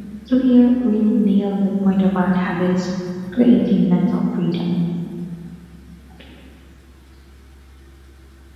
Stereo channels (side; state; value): both; identical; correlation 1.00